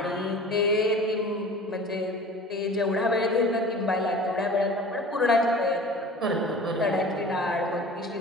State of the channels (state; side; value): normal; both; correlation 0.41